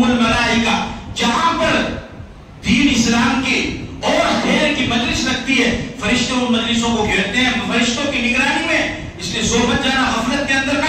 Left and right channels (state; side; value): identical; both; correlation 1.00